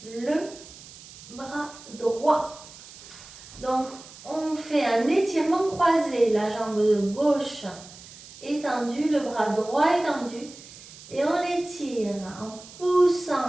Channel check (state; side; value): noise; right; hiss, 18 dB below the sound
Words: le bras droit. Donc, on fait un étirement croisé, la jambe de gauche étendue, le bras droit étendu. Et on l'étire en